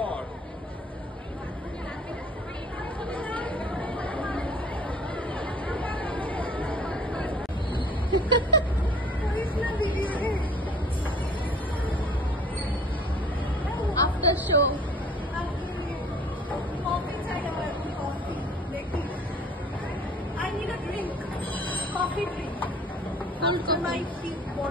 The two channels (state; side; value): normal; both; correlation 0.51